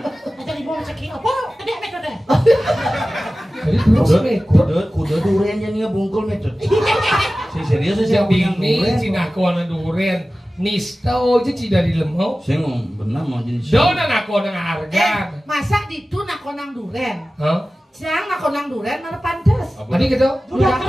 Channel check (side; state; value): both; normal; correlation 0.96